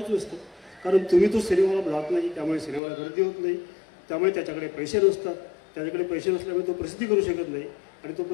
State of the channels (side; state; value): right; drops out; at 2.8 s